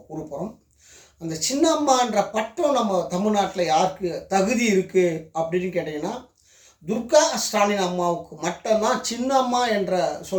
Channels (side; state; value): both; identical; correlation 1.00